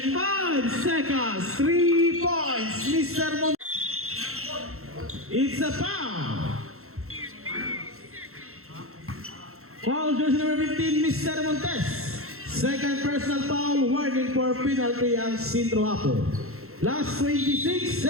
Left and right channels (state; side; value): late; left; 0.63 ms